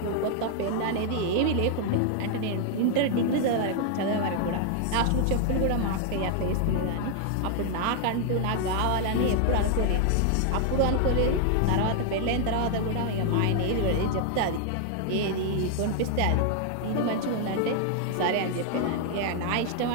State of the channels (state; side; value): different; both; correlation 0.00